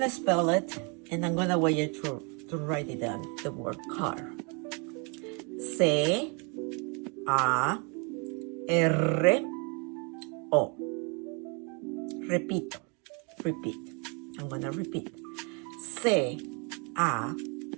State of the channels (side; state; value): left; quieter; 34.1 dB